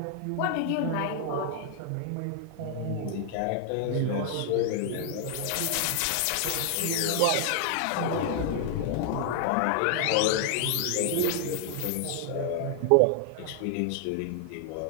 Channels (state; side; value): different; both; correlation 0.00